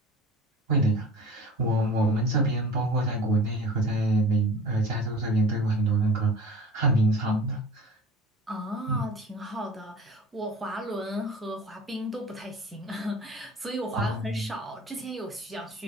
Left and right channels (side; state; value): both; normal; correlation 0.41